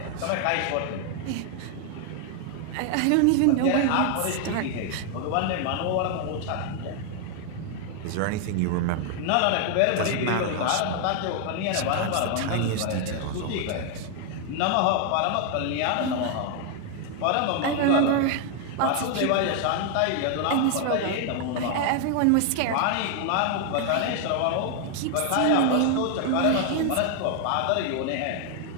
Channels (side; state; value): both; different; correlation 0.00